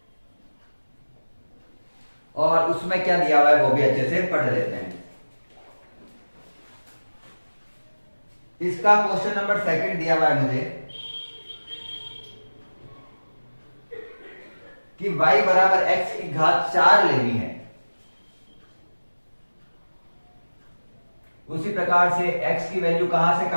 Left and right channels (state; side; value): inverted; both; correlation -1.00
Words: और उसमें क्या दिया हुआ है वो भी अच्छे से पढ़ लेते हैं। इसका क्वेश्चन नंबर 2 दिया हुआ है मुझे कि y बराबर x की घात 4 लेनी है। उसी प्रकार से x की वैल्यू कहां से